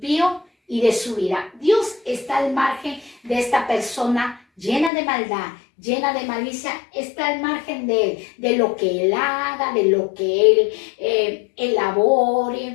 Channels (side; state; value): right; drops out; at 4.9 s